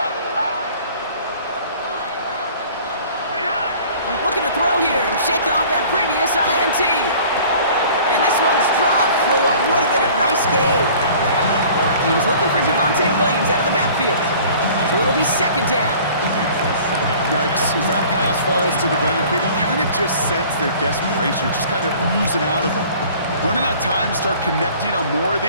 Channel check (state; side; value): inverted; both; correlation -0.49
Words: Looking to throw here and shake off that previous INT. And this one's dropped for what would have been a nice gain. He was looking for Javonte Williams out of the backfield. So it'll be 2nd down. Yikes, as that pass falls to the ground, you kind of just sense their desperation, just kind of oozing out of them. Running out of time to start connecting on more of